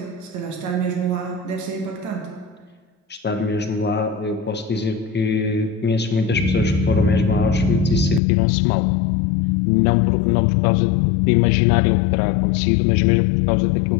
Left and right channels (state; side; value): drops out; right; at 8.2 s